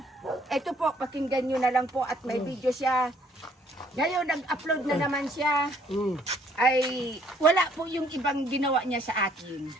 Ito po, pakinggan nyo na lang po at may video siya. Ngayon, nag-upload na naman siya. Ay, wala po yung ibang ginawa niya sa atin.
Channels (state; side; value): normal; both; correlation 0.64